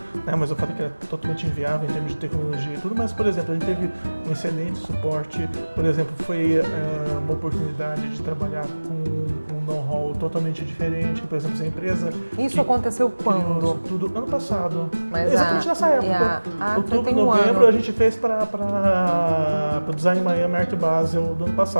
né? Mas eu falei que era totalmente inviável em termos de tecnologia e tudo, mas, por exemplo, a gente teve um excelente suporte, por exemplo, foi uma oportunidade de trabalhar com um know-how totalmente diferente, por exemplo, essa empresa... Isso aconteceu quando? Isso tudo ano passado, mas exatamente nessa época, outubro, novembro, a gente fez para o Design Miami Art Basel do ano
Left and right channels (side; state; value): both; inverted; correlation -1.00